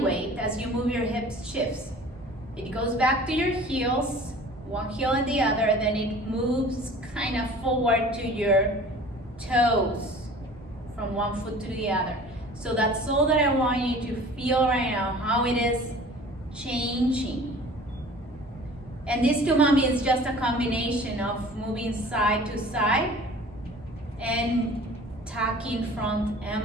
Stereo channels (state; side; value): normal; both; correlation 0.45